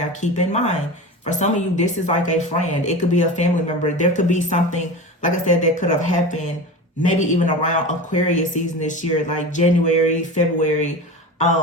keep in mind, for some of you, this is like a friend. It could be a family member. There could be something, like I said, that could have happened maybe even around Aquarius season this year, like January, February,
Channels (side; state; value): both; normal; correlation 0.29